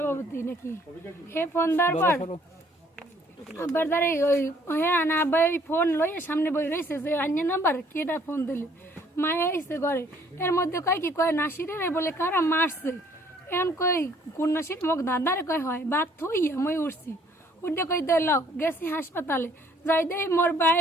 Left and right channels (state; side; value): normal; both; correlation 0.61